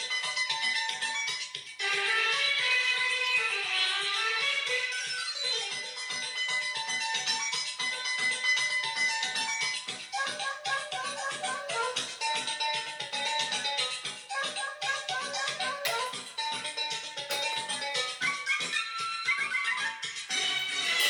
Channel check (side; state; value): both; identical; correlation 1.00